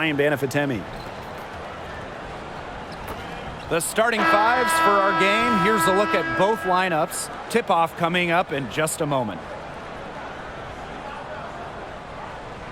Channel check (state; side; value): identical; both; correlation 1.00